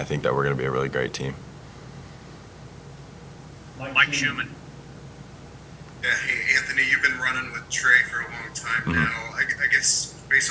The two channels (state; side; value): identical; both; correlation 1.00